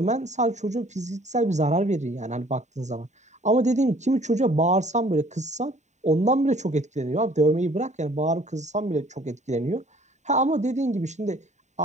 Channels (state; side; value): late; left; 0.34 ms